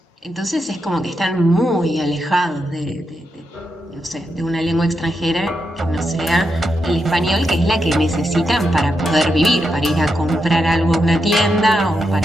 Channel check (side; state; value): both; normal; correlation 0.84